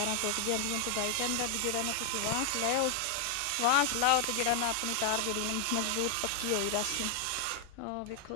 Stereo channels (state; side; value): different; both; correlation 0.00